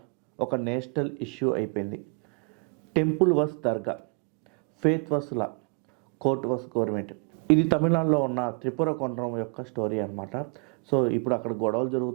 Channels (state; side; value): quieter; left; 36.4 dB